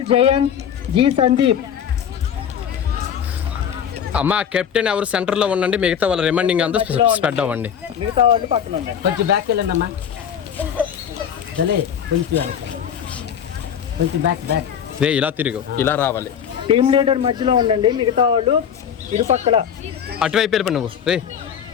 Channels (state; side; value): quieter; right; 8.4 dB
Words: Jayanth, G Sandeep. అమ్మా కెప్టెన్ ఎవరు సెంటర్ లో ఉండండి, మిగతా వాళ్ళ రిమైండింగ్ అంతా స్ప్రెడ్ అవ్వండి. మిగతా వాళ్ళు పక్కన ఉండండి. కొంచెం బ్యాక్ వెళ్ళండి అమ్మా. కొంచెం బ్యాక్ బ్యాక్. రే ఇలా తిరుగు, ఇలా రావాలి. టీమ్ లీడర్ మధ్యలో ఉండండి, మిగతా వాళ్ళు ఇరుపక్కల. అటువైపు వెళ్ళిపో నువ్వు. రే